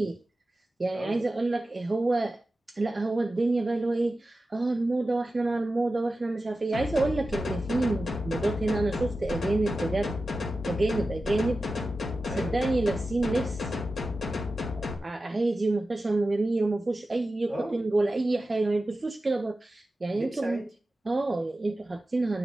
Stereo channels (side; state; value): both; normal; correlation 0.94